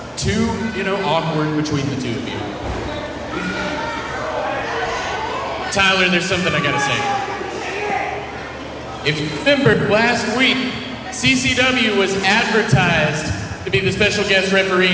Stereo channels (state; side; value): identical; both; correlation 1.00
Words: too, awkward between the two of you. Tyler, there's something I gotta say. If you remember, last week, CCW was advertised to be the special guest referee